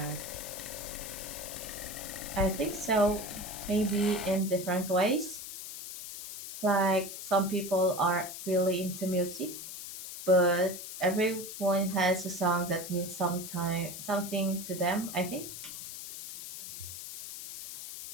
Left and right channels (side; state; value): left; noise; hiss, 9 dB below the sound